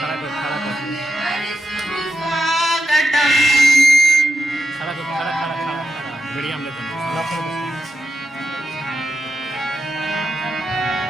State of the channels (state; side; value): normal; both; correlation 0.87